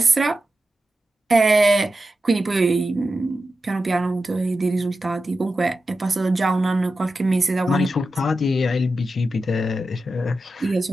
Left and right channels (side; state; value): both; normal; correlation 0.91